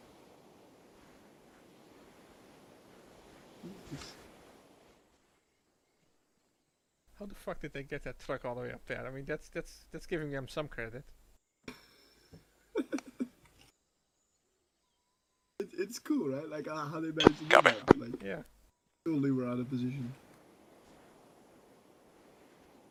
How the fuck did they get that truck all the way up there? I mean, that's giving them some credit. It's cool, right? Like how they managed to do that. Like, yeah. Totally were out of position.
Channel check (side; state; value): both; identical; correlation 1.00